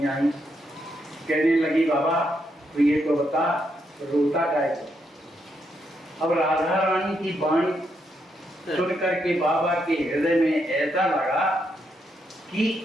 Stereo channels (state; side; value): normal; both; correlation 0.79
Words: आई, कहने लगी बाबा तो ये तो बता रोता काहे को? अब राधा रानी की वाणी सुन करके बाबा के हृदय में ऐसा लगा कि